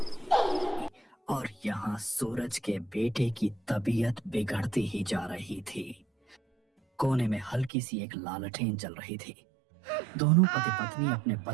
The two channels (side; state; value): left; drops out; at 7.7 s